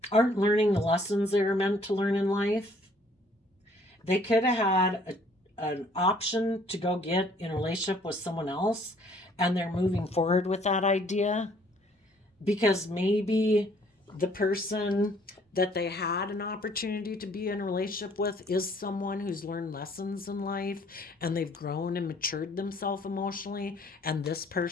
aren't learning the lessons they were meant to learn in life. They could have had an option to go get in a relationship with someone else, and they're moving forward with that idea because maybe the person that they had an opportunity to be in a relationship with is someone who's learned lessons in life and they've grown and matured themselves emotionally, and this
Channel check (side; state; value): both; normal; correlation 0.60